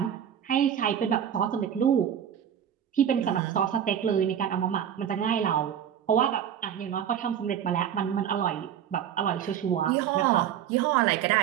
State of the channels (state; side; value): quieter; left; 9.4 dB